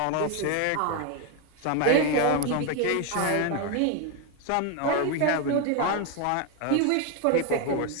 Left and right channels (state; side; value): different; both; correlation 0.01